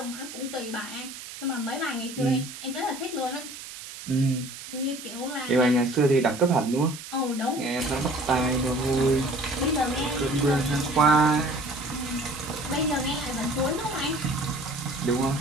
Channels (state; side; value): noise; right; hiss, 12 dB below the sound